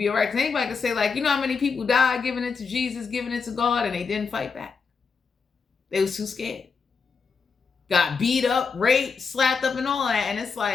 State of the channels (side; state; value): right; quieter; 5.3 dB